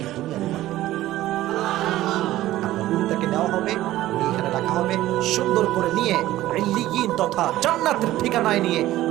দুনিয়াতে পাঠাবে। আপনার রুহটাকে নেওয়া হবে, এখানে রাখা হবে, সুন্দর করে নিয়ে ইল্লিয়িন তথা জান্নাতের ঠিকানায় নিয়ে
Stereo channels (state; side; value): quieter; left; 15.2 dB